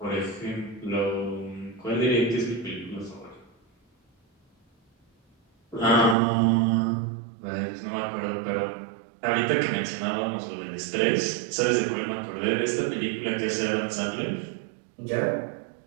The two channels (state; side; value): drops out; left; at 6.2 s